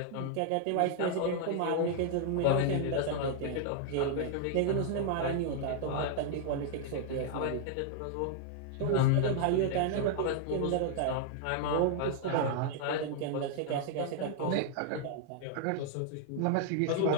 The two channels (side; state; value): both; different; correlation 0.00